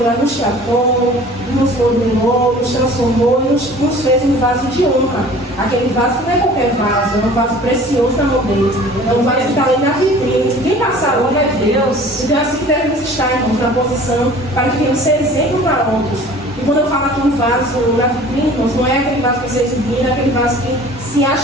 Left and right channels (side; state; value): both; normal; correlation 0.46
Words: lá, nos tratou, nos modelou, nos transformou e nos fez um vaso de honra. Aquele vaso não é qualquer vaso, é um vaso precioso na mão dele, é um vaso que está ali na vitrine. Quem passar lá vai ver. Então assim que devemos estar, irmãos, na posição para que venhamos ser exemplo para outros. E quando eu falo aqui um vaso na vitrine, irmãos, não é aquele vaso que você exibir, não é aquele vaso que se